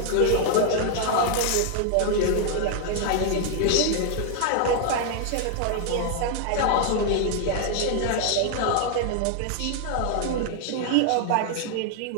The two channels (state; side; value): different; both; correlation 0.00